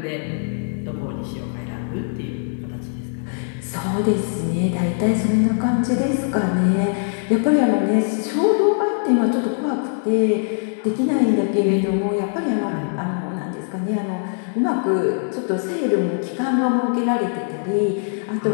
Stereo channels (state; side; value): silent; right; digital silence